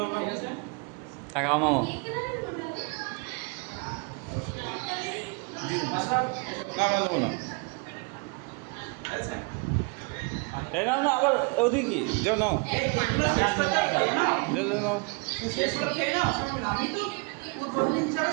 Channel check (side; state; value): left; quieter; 31.4 dB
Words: ঠিক আছে টাকা মামা মাস্টার না দেবো না আচ্ছা এই নাও না আবার ওদিকে যাও নাও যাও নাও শেষ করতে না আমি তো পূর্বদিন হিসাবে